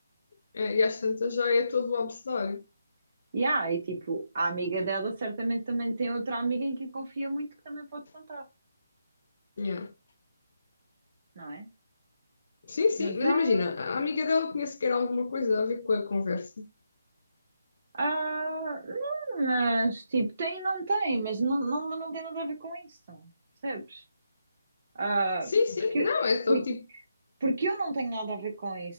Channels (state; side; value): inverted; both; correlation -0.83